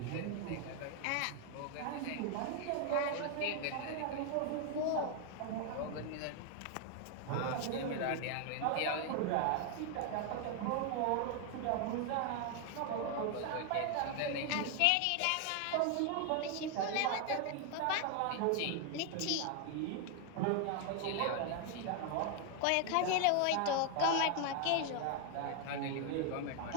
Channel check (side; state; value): both; different; correlation 0.01